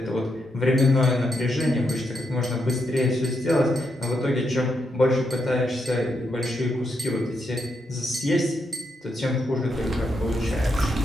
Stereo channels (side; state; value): both; normal; correlation 0.81